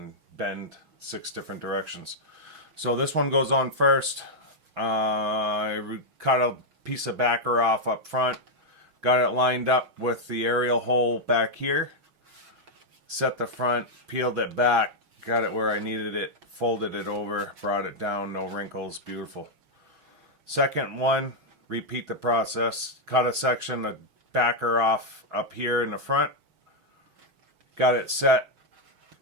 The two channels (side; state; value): left; late; 6.3 ms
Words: bend 6 different directions. So this one goes on first. I cut a piece of backer off up front, got it lined up with the aerial hole back here, set the front, peeled it back, got it where I needed it, folded it over, brought it down, no wrinkles, beautiful. Second one, repeat the process, cut a section of backer off up here in the front, got it set.